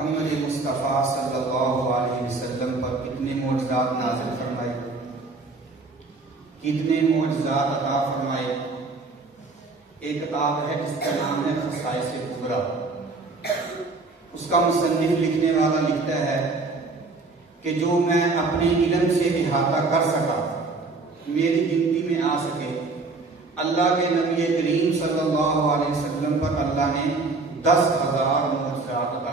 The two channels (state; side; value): quieter; left; 3.7 dB